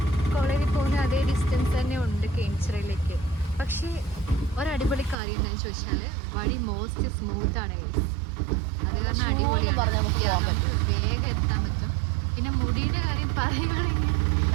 കാര്യം എന്താണെന്ന് ചോദിച്ചാൽ വഴി മോസ്റ്റ് സ്മൂത്താണ് ഗൈസ്. അത് കാരണം അടിപൊളിയാണ്. നമുക്ക് വേഗം എത്താൻ പറ്റും. പിന്നെ മുടീൻ്റെ കാര്യം പറയുകയാണെങ്കിൽ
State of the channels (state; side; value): drops out; left; at 5.2 s